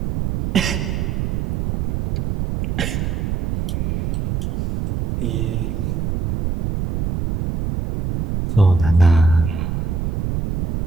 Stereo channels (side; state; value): right; noise; rumble, 2 dB below the sound